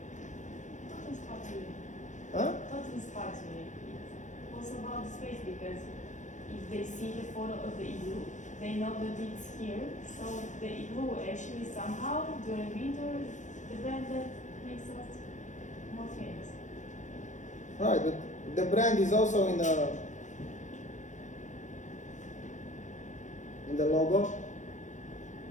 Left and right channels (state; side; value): late; right; 0.35 ms